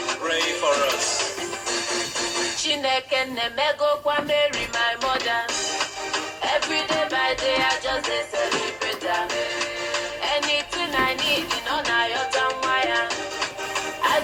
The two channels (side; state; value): both; identical; correlation 1.00